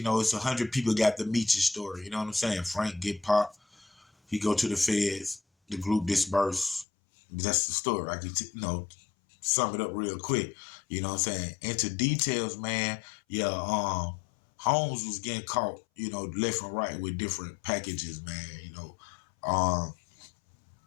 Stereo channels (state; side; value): drops out; right; at 6.9 s